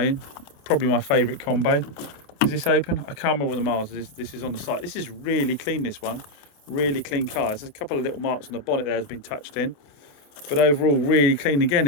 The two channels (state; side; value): late; right; 28 ms